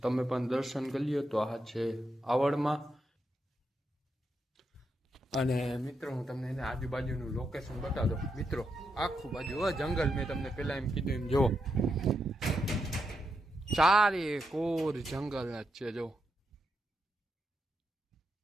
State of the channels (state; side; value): normal; both; correlation 0.83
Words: તમે પણ દર્શન કરી લ્યો. તો આ છે આવડમાં. અને મિત્રો હું તમને એને આજુબાજુનું લોકેશન બતાવી દઉં. મિત્રો આખું બાજુ જંગલ. મેં તમને પેલા એમ કીધું એમ જુઓ, ચારે કોર જંગલ જ છે. જો